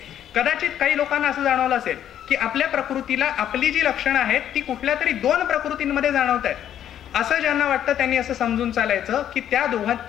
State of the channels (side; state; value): right; quieter; 10.4 dB